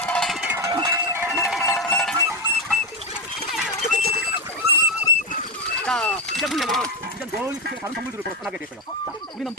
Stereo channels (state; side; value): normal; both; correlation 0.11